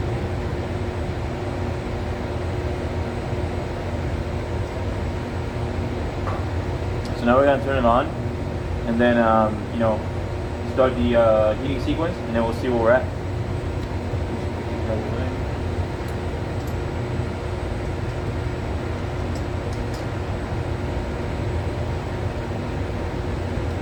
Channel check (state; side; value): identical; both; correlation 1.00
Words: So now we're gonna turn it on, and then you know, start the heating sequence, and then we'll see where we're at.